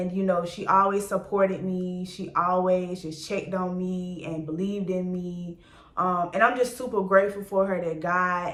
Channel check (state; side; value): identical; both; correlation 1.00